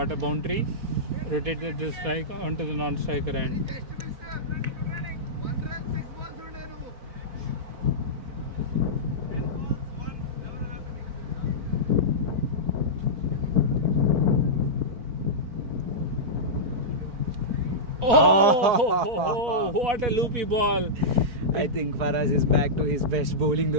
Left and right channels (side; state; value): left; late; 4.5 ms